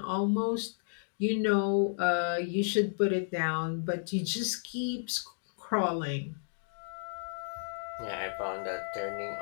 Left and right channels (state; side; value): silent; right; digital silence